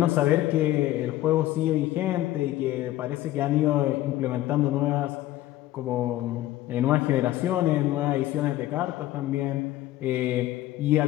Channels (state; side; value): quieter; right; 14.9 dB